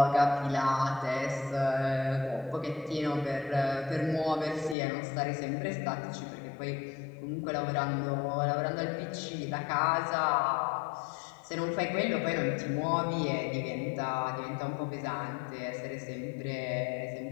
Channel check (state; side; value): drops out; right; at 4.8 s